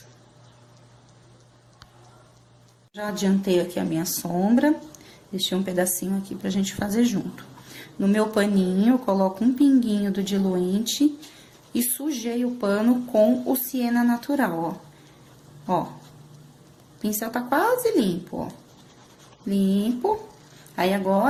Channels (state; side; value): identical; both; correlation 1.00